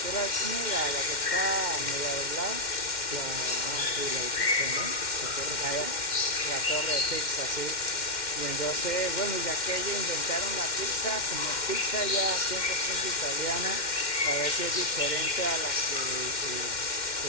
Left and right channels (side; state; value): right; late; 2.1 ms